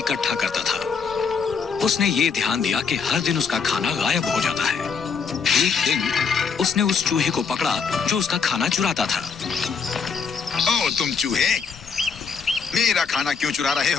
करता था। उसने ये ध्यान दिया कि हर दिन उसका खाना गायब हो जाता है। एक दिन उसने उस चूहे को पकड़ा जो उसका खाना चुराता था। ओ तुम चूहे, मेरा खाना क्यों चुरा रहे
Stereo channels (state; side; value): quieter; right; 5.8 dB